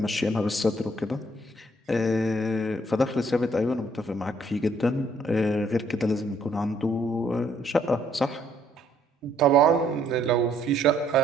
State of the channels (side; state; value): both; normal; correlation 0.66